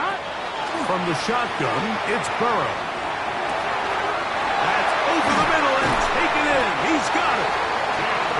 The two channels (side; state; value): both; identical; correlation 1.00